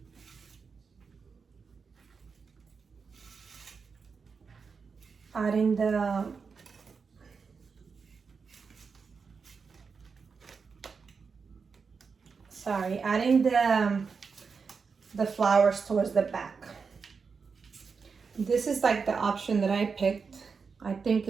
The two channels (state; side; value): quieter; left; 5.3 dB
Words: adding the flowers towards the back. This is like the option that I picked. I think